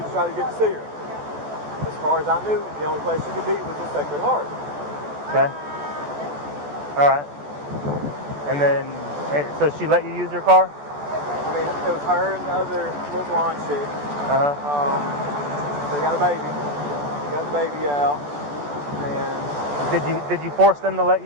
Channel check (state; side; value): late; left; 14 ms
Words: to try to get to see her. As far as I knew, the only place she could be was the Sacred Heart. Okay. All right. And then, so she let you use her car? I mean, it was her and the other little blonde chick. They got a baby. They got the baby out. And did you force them to let